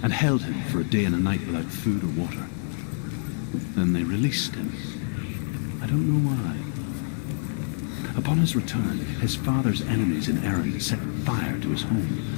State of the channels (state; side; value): silent; right; 61 dB below the other